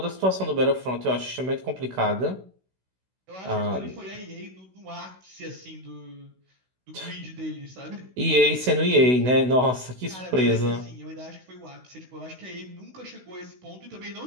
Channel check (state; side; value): late; left; 16 ms